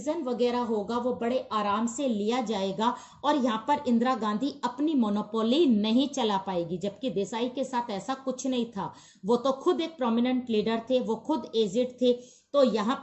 वगैरह होगा वो बड़े आराम से लिया जाएगा और यहाँ पर इंदिरा गांधी अपनी मोनोपोली नहीं चला पाएगी, जबकि देसाई के साथ ऐसा कुछ नहीं था। वो तो खुद एक प्रोमिनेंट लीडर थे, वो खुद एजेड थे, तो यहाँ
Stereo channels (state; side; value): identical; both; correlation 1.00